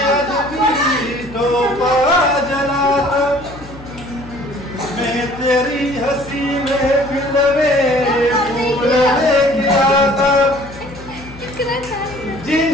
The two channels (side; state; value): left; noise; hum, 17 dB below the sound